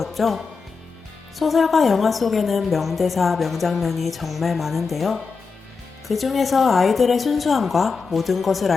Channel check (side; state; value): right; quieter; 4.9 dB